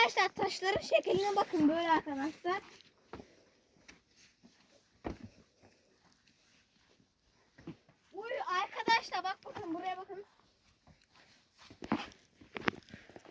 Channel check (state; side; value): identical; both; correlation 1.00